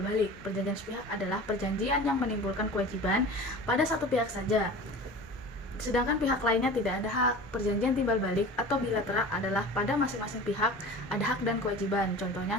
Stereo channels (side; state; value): both; normal; correlation 0.37